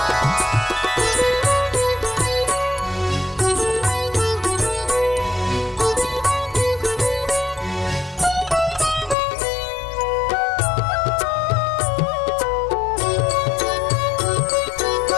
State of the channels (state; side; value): drops out; right; at 9.2 s